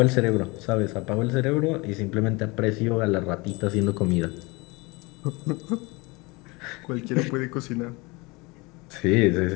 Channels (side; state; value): right; quieter; 25.6 dB